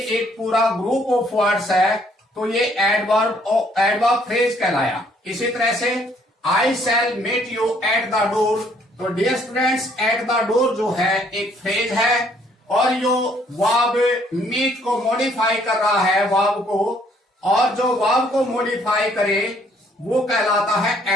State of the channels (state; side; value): normal; both; correlation 0.64